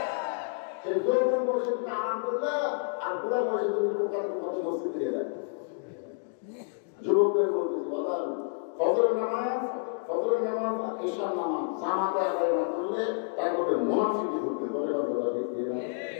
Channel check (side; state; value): right; silent; digital silence